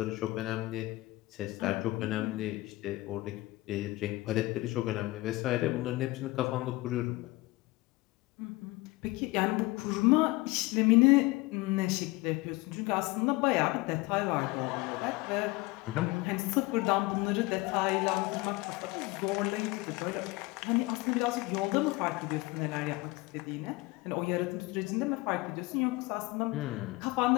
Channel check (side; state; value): right; quieter; 21.1 dB